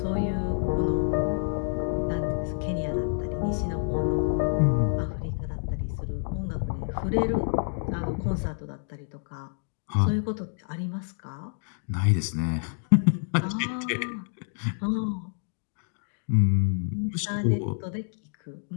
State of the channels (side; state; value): right; silent; digital silence